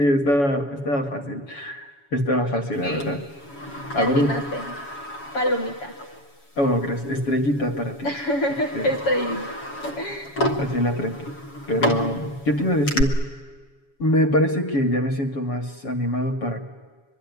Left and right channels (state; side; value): late; right; 7.1 ms